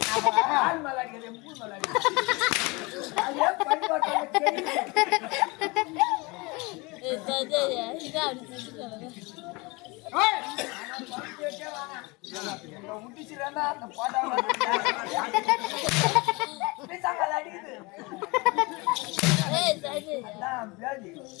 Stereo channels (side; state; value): right; quieter; 26.0 dB